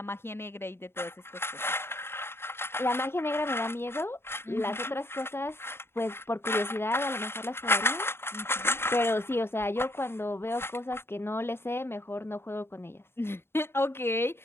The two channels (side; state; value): right; late; 0.11 ms